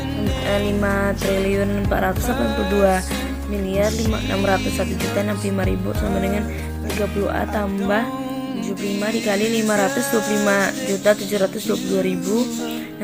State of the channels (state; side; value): identical; both; correlation 1.00